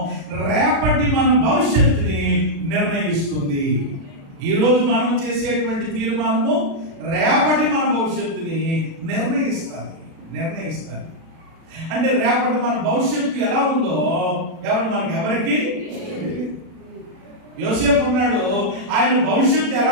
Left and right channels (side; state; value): left; late; 36 ms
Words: రేపటి మన భవిష్యత్తుని నిర్ణయిస్తుంది. ఈరోజు మనం చేసేటువంటి తీర్మానము రేపటి మన భవిష్యత్తుని నిర్ణయిస్తుంది. అంటే రేపటి మన భవిష్యత్తు ఎలా ఉందో ఎవరికి యోసేపు ఉన్నాడు, ఆయన భవిష్యత్తు